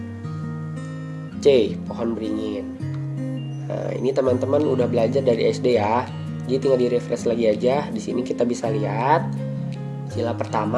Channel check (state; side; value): identical; both; correlation 1.00